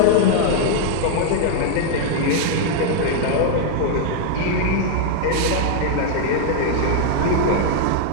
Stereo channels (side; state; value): both; different; correlation 0.00